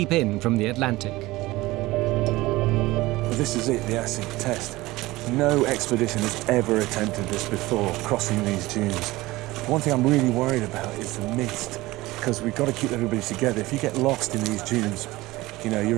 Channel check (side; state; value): left; quieter; 19.3 dB